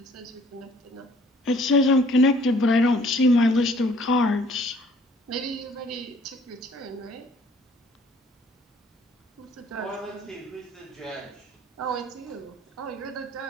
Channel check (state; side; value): normal; both; correlation 0.57